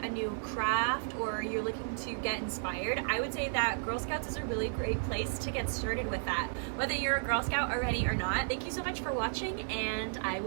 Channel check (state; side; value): silent; left; digital silence